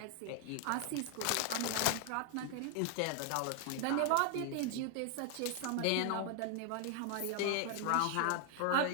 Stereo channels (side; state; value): both; different; correlation 0.00